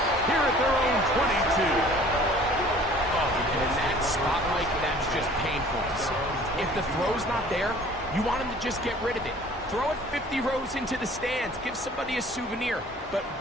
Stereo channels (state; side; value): normal; both; correlation 0.50